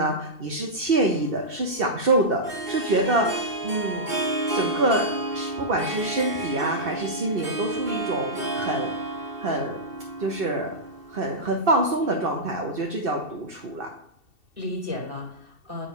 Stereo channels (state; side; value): late; left; 2.7 ms